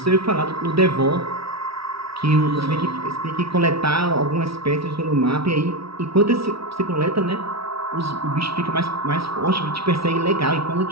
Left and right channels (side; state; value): left; late; 0.76 ms